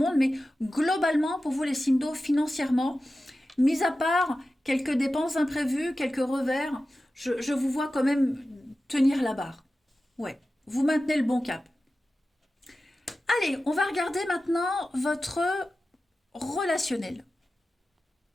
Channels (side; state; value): both; normal; correlation 0.94